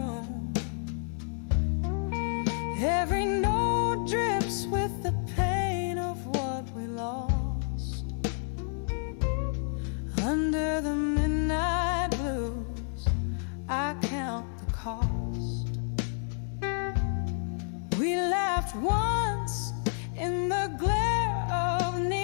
Every note drips with the pain of what we lost. Under the midnight blues, I count the cost. We laughed once in the glare of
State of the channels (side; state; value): right; silent; 58 dB below the other